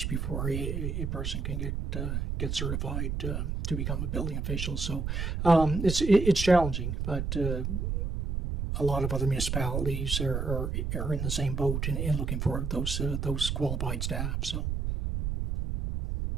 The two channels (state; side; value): noise; right; rumble, 2 dB below the sound